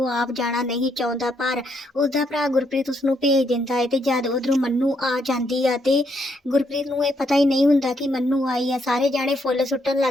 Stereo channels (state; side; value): normal; both; correlation 0.75